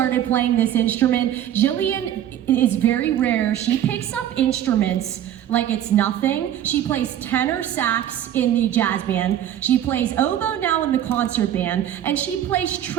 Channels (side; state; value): left; quieter; 11.1 dB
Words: playing this instrument. Jillian is very rare. She picks up instruments like it's nothing. She plays tenor sax in the jazz band. She plays oboe now in the concert band, and she plays